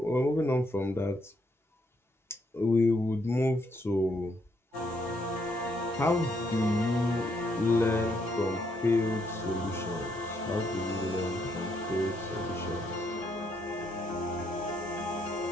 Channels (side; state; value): both; normal; correlation 0.74